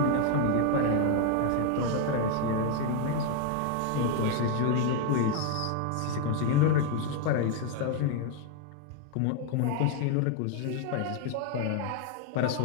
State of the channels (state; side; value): different; both; correlation 0.01